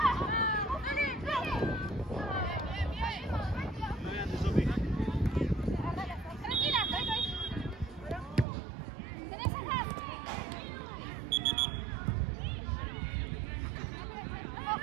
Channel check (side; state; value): left; drops out; at 8.5 s